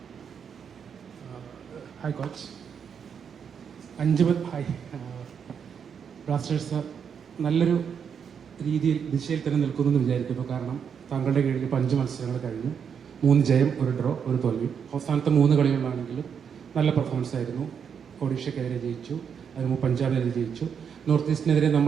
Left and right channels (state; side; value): quieter; left; 7.2 dB